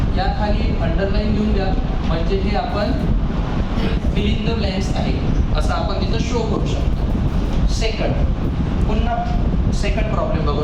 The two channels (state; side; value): identical; both; correlation 1.00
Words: या खाली अंडरलाईन घेऊन द्या, म्हणजे हे आपण फिल इन द ब्लँक्स आहे असं आपण तिथं शो करू शकतो. सेकंड, पुन्हा सेकंड प्रॉब्लेम